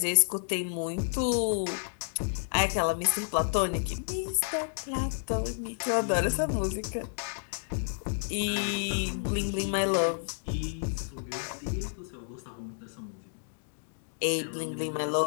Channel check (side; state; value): right; silent; digital silence